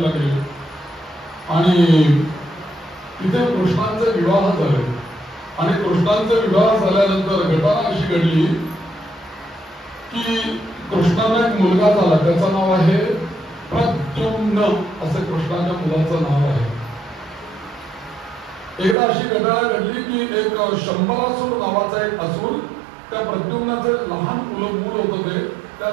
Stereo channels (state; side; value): drops out; left; at 18.9 s